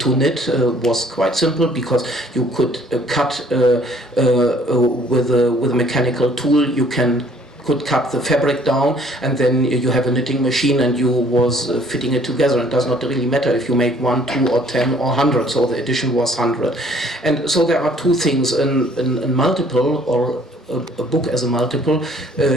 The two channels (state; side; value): normal; both; correlation 0.59